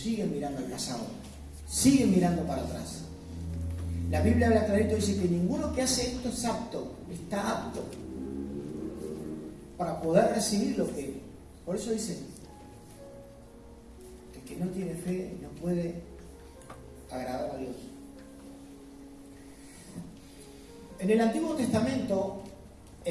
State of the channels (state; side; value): identical; both; correlation 1.00